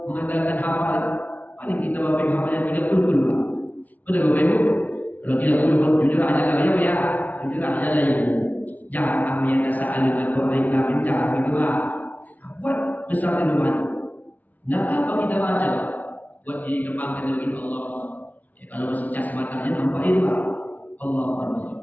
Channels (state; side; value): late; right; 0.077 ms